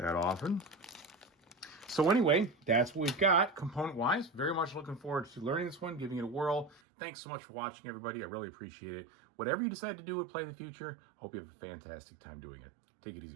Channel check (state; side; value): drops out; left; at 6.8 s